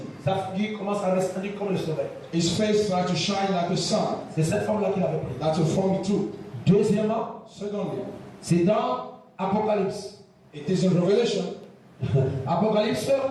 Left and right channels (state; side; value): identical; both; correlation 1.00